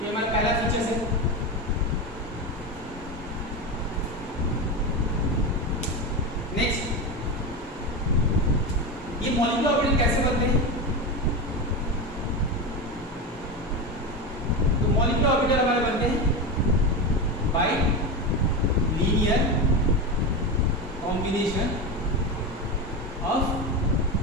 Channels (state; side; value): normal; both; correlation 0.19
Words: ये हमारा पहला फीचर्स है। नेक्स्ट, ये मॉलिक्यूलर ऑर्बिटल कैसे बनते हैं? तो मॉलिक्यूलर ऑर्बिटल हमारे बनते हैं by linear combination of